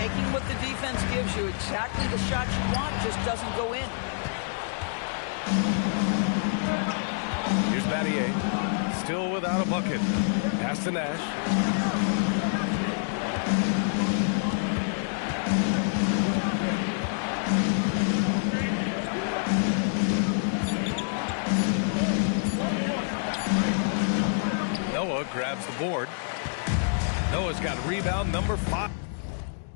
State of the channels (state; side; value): silent; right; digital silence